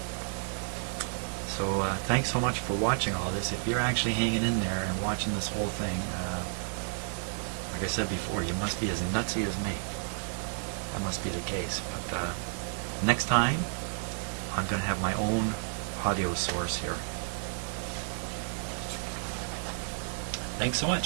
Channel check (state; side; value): silent; left; digital silence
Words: So thanks so much for watching all this. If you're actually hanging in there and watching this whole thing, like I said before, you must be as nutsy as me. That must be the case. But next time, I'm going to have my own audio source here. Thanks so